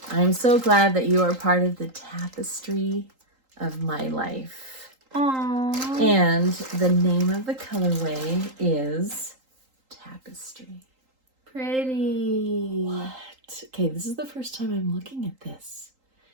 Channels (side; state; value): left; late; 3.8 ms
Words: I'm so glad that you are part of the tapestry of my life. Aww. And the name of the colorway is Tapestry. Pretty. What? Okay, this is the first time I'm looking at this.